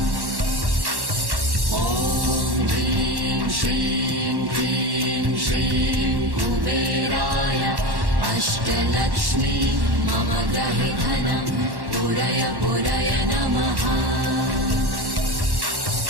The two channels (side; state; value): left; late; 1.1 ms